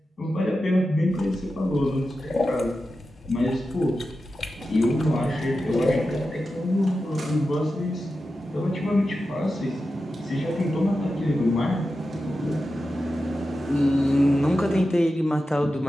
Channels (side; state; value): both; normal; correlation 0.91